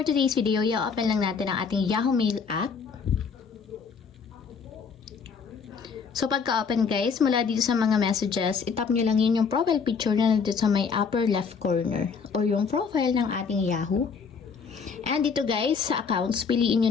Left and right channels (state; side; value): quieter; right; 5.7 dB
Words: today's video, i-open lang natin ang ating Yahoo Mail app. So pagka-open guys, mula dito sa mga messages, itap nyo lang yun yung profile picture na nandito sa may upper left corner or yung profile ng ating Yahoo. And dito guys, sa accounts, piliin